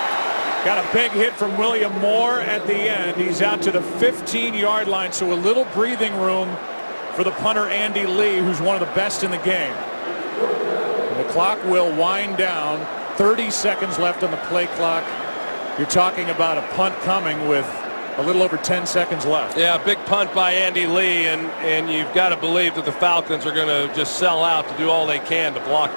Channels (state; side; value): inverted; both; correlation -1.00